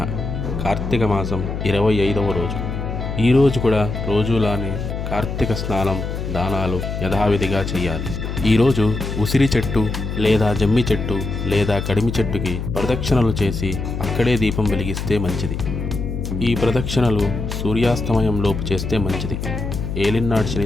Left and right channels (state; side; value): noise; left; hum, 5 dB below the sound